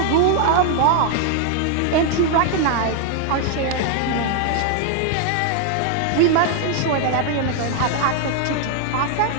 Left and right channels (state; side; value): different; both; correlation 0.00